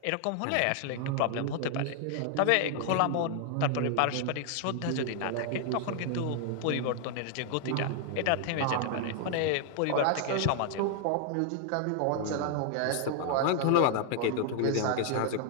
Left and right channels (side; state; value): both; different; correlation 0.00